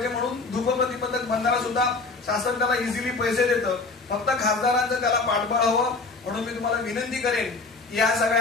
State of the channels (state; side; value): quieter; right; 3.8 dB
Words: म्हणून धूप प्रतिबंधक बंधारा सुद्धा शासन त्याला इझिली पैसे देतं. फक्त खासदारांचं त्याला पाठबळ हवं. म्हणून मी तुम्हाला विनंती करेन की या